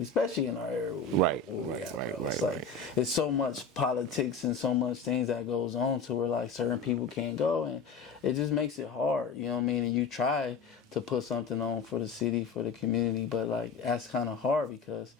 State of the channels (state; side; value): quieter; right; 4.6 dB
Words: especially in our area. It's like it's so much politics and so much things that goes on to where like certain people can't go, and it just makes it hard. You know what I mean? And you try to put something on for the city, for the community, but like that's kind of hard because